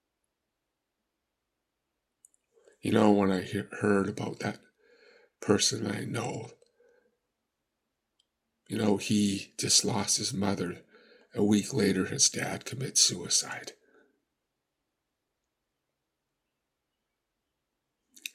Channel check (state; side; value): identical; both; correlation 1.00